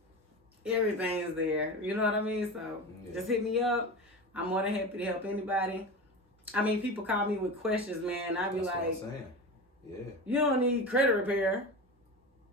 Everything's there. You know what I mean? So just hit me up. I'm more than happy to help anybody. I mean, people call me with questions, man. I be That's like, what I'm saying. Yeah. You don't need credit repair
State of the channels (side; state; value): both; normal; correlation 0.27